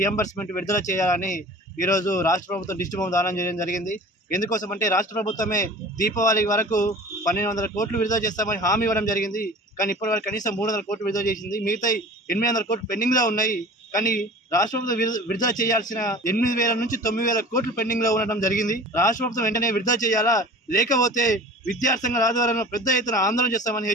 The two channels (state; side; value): normal; both; correlation 0.41